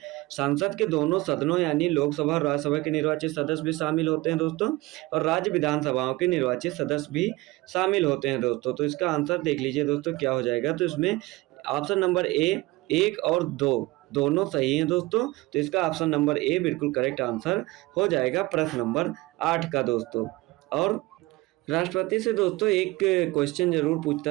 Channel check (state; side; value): quieter; left; 21.0 dB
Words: संसद के दोनों सदनों यानी लोकसभा और राज्यसभा के निर्वाचित सदस्य भी शामिल होते हैं दोस्तों, और राज्य विधानसभाओं के निर्वाचित सदस्य भी शामिल होते हैं दोस्तों। तो इसका आंसर देख लीजिए दोस्तों क्या हो जाएगा। तो इसमें ऑप्शन नंबर ए 1 और 2 दोनों सही हैं दोस्तों। तो इसका ऑप्शन नंबर ए बिल्कुल करेक्ट आंसर हो जाएगा प्रश्न नंबर 8 का दोस्तों। और राष्ट्रपति से दोस्तों एक क्वेश्चन जरूर पूछता